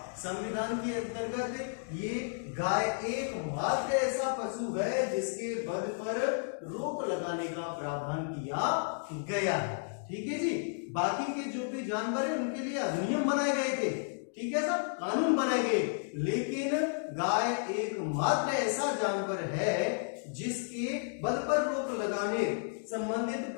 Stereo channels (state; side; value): silent; right; digital silence